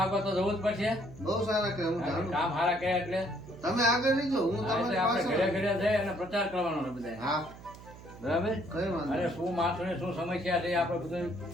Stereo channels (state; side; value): noise; right; hum, 17 dB below the sound